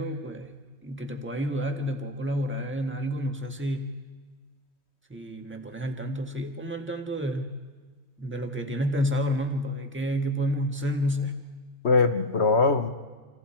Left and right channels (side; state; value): both; normal; correlation 0.15